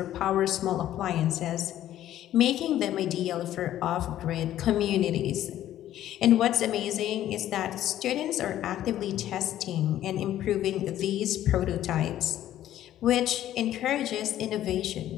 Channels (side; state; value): right; quieter; 12.6 dB